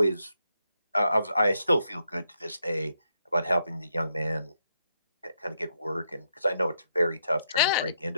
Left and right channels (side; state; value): both; inverted; correlation -0.78